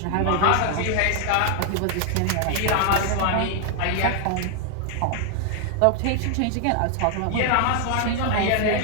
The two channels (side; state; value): both; different; correlation 0.00